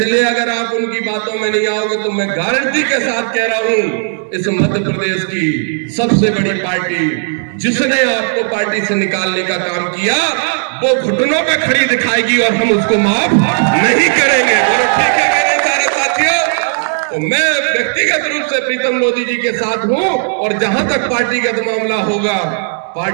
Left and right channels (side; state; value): left; silent; digital silence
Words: अगर आप उनकी बातों में नहीं आओगे तो मैं गारंटी के साथ कह रहा हूं, इस मध्य प्रदेश की सबसे बड़ी पार्टी जिसने आपको पार्टी से निकालने का काम किया वो घुटनों पे खड़ी दिखाएगी और हम उसको माफ नहीं करेंगे। बोलो ठीक है मेरे सारे साथियों। तो मैं व्यक्तिगत रूप से प्रीतम मोदी जी के साथ हूं और जहां तक पार्टीगत मामला होगा,